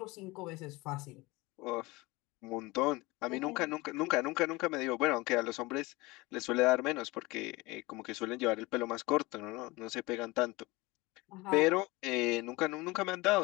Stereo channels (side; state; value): right; quieter; 22.6 dB